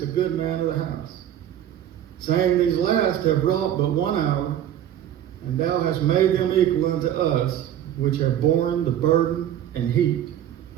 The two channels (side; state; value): left; quieter; 11.0 dB